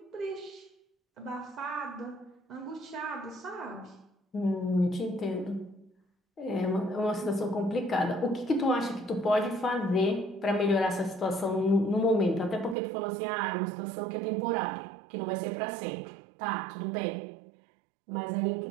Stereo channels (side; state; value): left; drops out; at 12.8 s